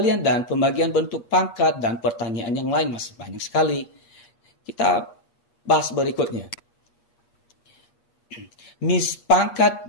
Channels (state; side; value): late; right; 8.4 ms